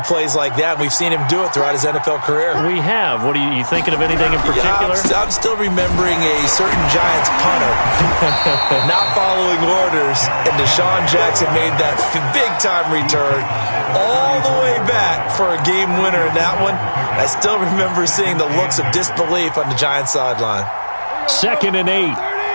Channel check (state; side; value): inverted; both; correlation -1.00